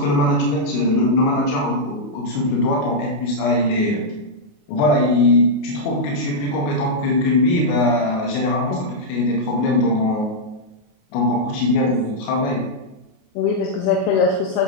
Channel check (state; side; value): late; right; 28 ms